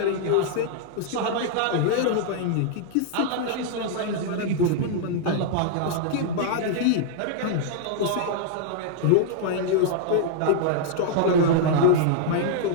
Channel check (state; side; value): different; both; correlation -0.01